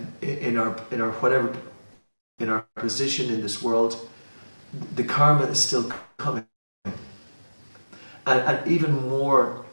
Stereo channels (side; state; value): both; inverted; correlation -1.00